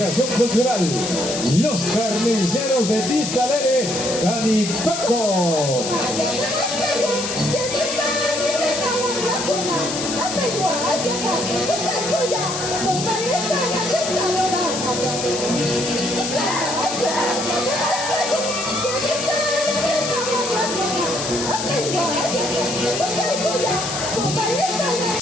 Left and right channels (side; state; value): left; noise; hiss, 5 dB below the sound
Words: Cultural Los Carniceros de Vista Alegre, Canipaco.